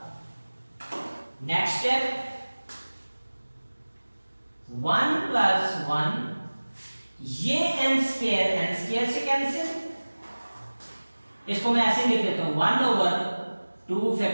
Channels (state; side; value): inverted; both; correlation -1.00